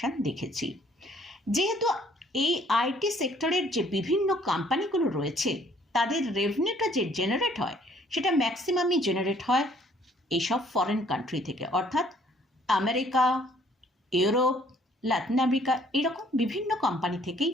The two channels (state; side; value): normal; both; correlation 0.61